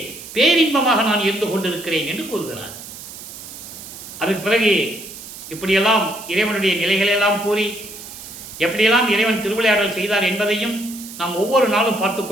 பேரின்பமாக நான் இருந்து கொண்டிருக்கிறேன் என்று கூறுகிறார். அதுக்கு பிறகு இப்படியெல்லாம் இறைவனுடைய நிலைகளெல்லாம் கூறி எப்படியெல்லாம் இறைவன் திருவிளையாடல் செய்தார் என்பதையும் நாம் ஒவ்வொரு நாளும் பார்த்து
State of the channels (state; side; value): noise; right; hiss, 13 dB below the sound